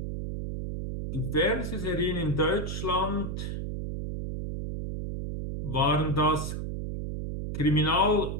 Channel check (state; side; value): noise; right; hum, 5 dB below the sound